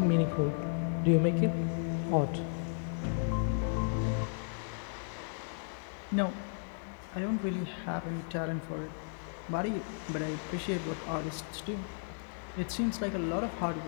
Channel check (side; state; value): right; silent; digital silence